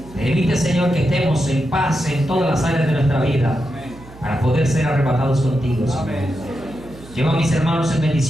Permite, Señor, que estemos en paz en todas las áreas de nuestra vida para poder ser arrebatados contigo, Señor. Lleva a mis hermanos en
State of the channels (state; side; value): noise; right; hum, 19 dB below the sound